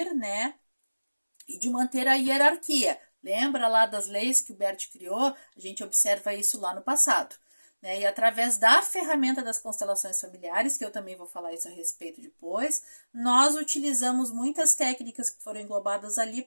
né, e de manter a hierarquia. Lembra lá das leis que o Bert criou? A gente observa isso lá no passado. Né? E através da ferramenta das constelações familiares, que eu também vou falar isso a respeito depois, nós utilizamos muitas técnicas que foram englobadas ali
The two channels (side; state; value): both; inverted; correlation -1.00